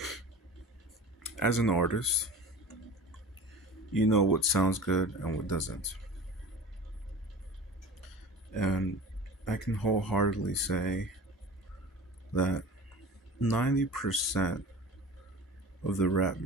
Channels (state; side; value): normal; both; correlation 0.38